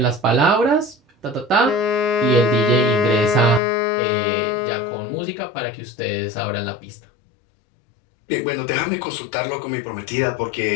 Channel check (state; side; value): drops out; right; at 3.6 s